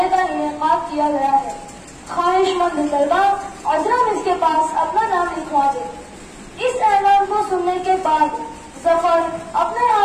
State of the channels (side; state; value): both; identical; correlation 1.00